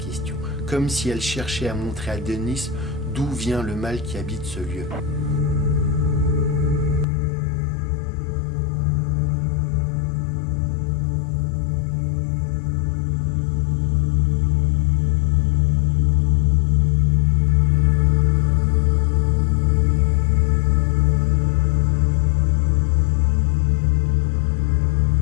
comme si elle cherchait à montrer à Denis d'où vient le mal qui habite ce lieu.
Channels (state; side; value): drops out; right; at 7.1 s